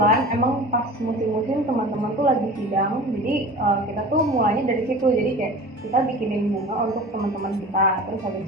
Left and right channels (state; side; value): normal; both; correlation 0.38